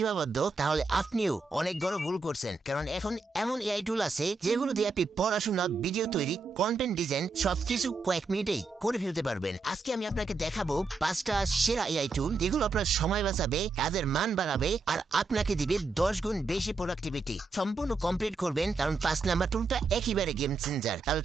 তাহলে আপনিও অনেক বড় ভুল করছেন। কারণ এখন এমন এআই টুল আছে যেগুলো দিয়ে আপনি পড়াশোনা, ভিডিও তৈরি, কন্টেন্ট ডিজাইন সবকিছু কয়েক মিনিটেই করে ফেলতে পারবেন। আজকে আমি আপনাকে দেখাবো 5টা সেরা এআই টুল যেগুলো আপনার সময় বাঁচাবে, কাজের মান বাড়াবে আর আপনাকে দিবে 10 গুণ বেশি প্রোডাক্টিভিটি। সম্পূর্ণ কমপ্লিট করবেন, কারণ 5 নাম্বার টুলটা একেবারে গেম চেঞ্জার। তাহলে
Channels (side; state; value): left; quieter; 3.9 dB